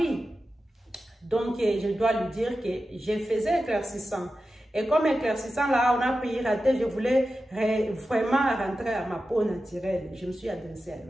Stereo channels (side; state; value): both; normal; correlation 0.92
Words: Donc, je dois lui dire que je faisais éclaircissant. Et comme éclaircissant, là, on a piraté, je voulais vraiment rentrer à ma peau naturelle. Je me suis adressée à